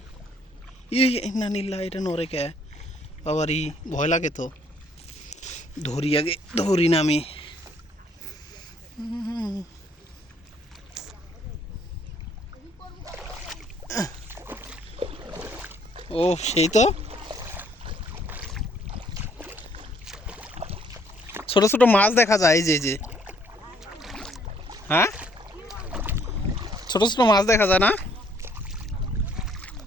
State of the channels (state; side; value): normal; both; correlation 0.64